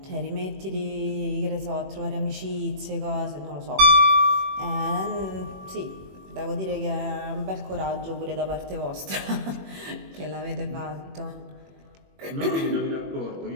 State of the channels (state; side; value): late; left; 21 ms